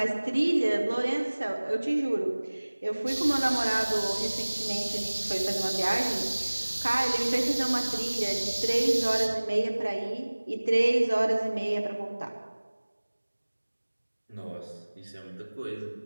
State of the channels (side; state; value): both; inverted; correlation -1.00